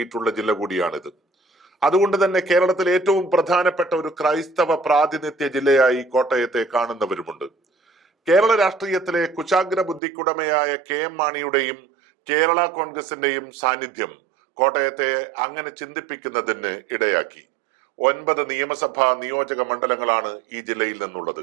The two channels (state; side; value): drops out; left; at 10.0 s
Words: ജില്ല കൂടിയാണിത്. അതുകൊണ്ട് തന്നെ കേരളത്തിലെ ഏറ്റവും പ്രധാനപ്പെട്ട ഒരു ക്രൈസ്തവ പ്രാതിനിധ്യ ജില്ലയായി കോട്ടയത്തെ കാണുന്നവരുമുണ്ട്. കേരള രാഷ്ട്രീയത്തിലെ കുശാഗ്ര ബുദ്ധിക്കുടമയായ KM മാണിയുടെയും കേരള കോൺഗ്രസിന്റെയും സാന്നിധ്യം കോട്ടയത്തെ അങ്ങനെ ചിന്തിപ്പിക്കുന്നതിന് ഇടയാക്കി. 9 നിയമസഭാ നിയോജക മണ്ഡലങ്ങളാണ് ഈ ജില്ലയിൽ നിന്നുള്ളത്.